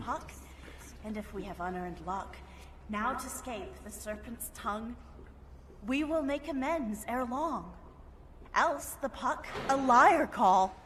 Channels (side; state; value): both; identical; correlation 1.00